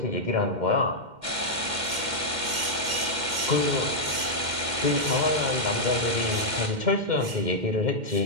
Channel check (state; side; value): late; left; 2.1 ms